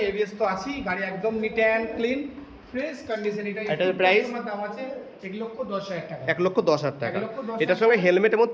ABS তো আছেই। গাড়ি একদম neat and clean, fresh condition. এটার প্রাইস দাম আছে 1,10,000 টাকা। 1,10,000 টাকা। এটার সঙ্গে হেলমেট এবং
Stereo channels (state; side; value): identical; both; correlation 1.00